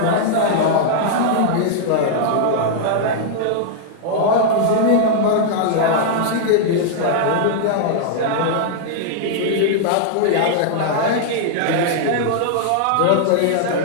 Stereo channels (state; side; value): different; both; correlation -0.01